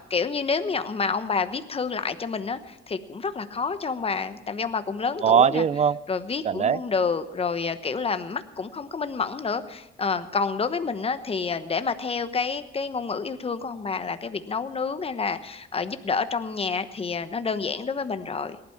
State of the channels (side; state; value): both; normal; correlation 0.21